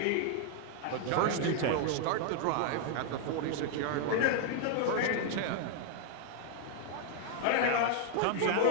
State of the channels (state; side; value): different; both; correlation 0.00